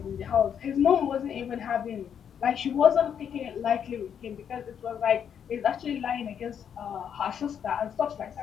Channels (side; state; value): right; quieter; 8.2 dB